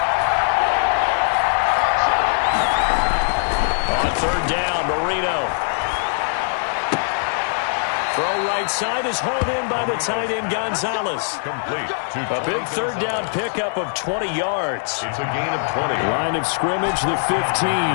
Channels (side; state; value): right; silent; 65 dB below the other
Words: On 3rd down, Marino. Throw right side is hauled in by the tight end, Gonzalez. Complete. A big 3rd down pickup of 20 yards. It's a gain of 20. Line of scrimmage, the